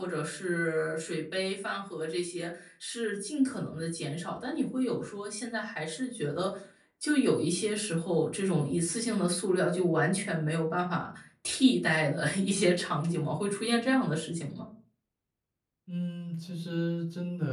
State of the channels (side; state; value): both; identical; correlation 1.00